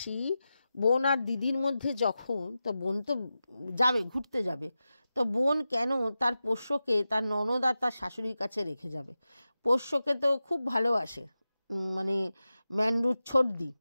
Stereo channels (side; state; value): both; inverted; correlation -0.93